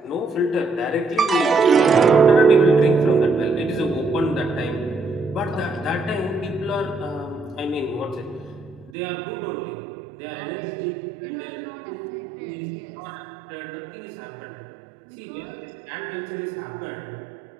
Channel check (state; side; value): drops out; left; at 9.0 s